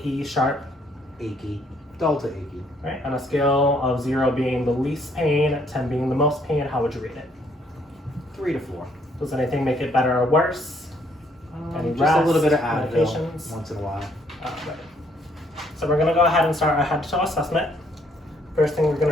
sharp? Achy. Dull to achy. All right. On a scale of 0 being the least pain, 10 being the most pain, how would you rate it? 3 to 4. Does anything make it better or worse? Any Just rest, a little bit of Advil medications? once in a while. Right. So we're going to go ahead and start our head-to-toe assessment. First thing we're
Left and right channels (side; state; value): both; normal; correlation 0.67